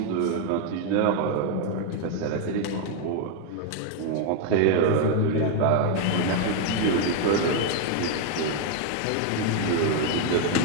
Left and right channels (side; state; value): both; different; correlation 0.00